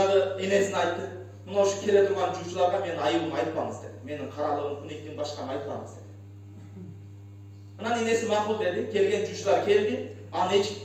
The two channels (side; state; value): both; identical; correlation 1.00